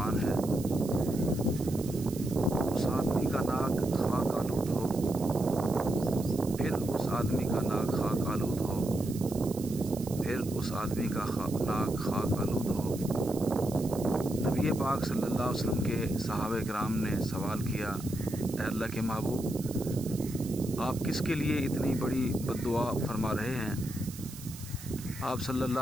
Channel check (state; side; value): noise; right; hiss, 15 dB below the sound